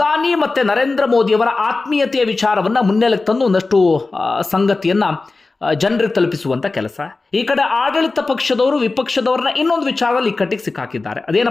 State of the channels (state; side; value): quieter; right; 3.6 dB